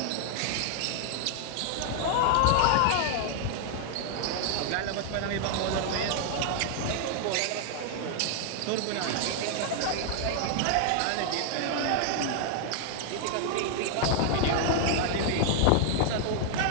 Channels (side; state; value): both; different; correlation 0.00